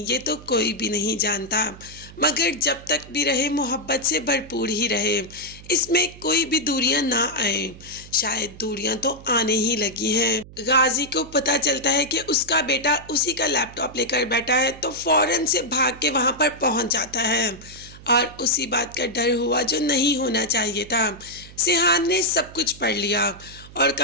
ये तो कोई भी नहीं जानता। मगर जब तक भी रहे मोहब्बत से भरपूर ही रहे, इसमें कोई भी दूरियां ना आए। शायद दूरियां तो आने ही लगी हैं। गाजी को पता चलता है कि उसका बेटा उसी का लैपटॉप लेकर बैठा है तो फौरन से भाग के वहां पर पहुंच जाता है और उसी बात का डर हुआ जो नहीं होना चाहिए था। सिहान ने सब कुछ पढ़ लिया और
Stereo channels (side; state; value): right; noise; hum, 18 dB below the sound